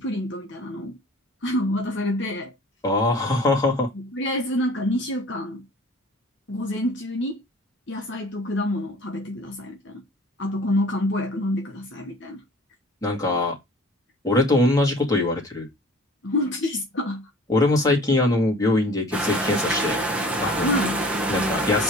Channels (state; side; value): normal; both; correlation 0.47